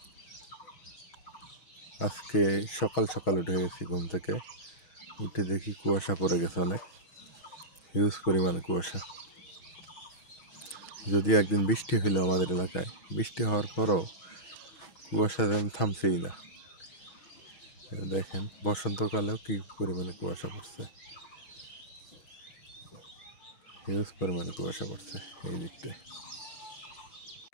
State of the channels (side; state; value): right; late; 6.2 ms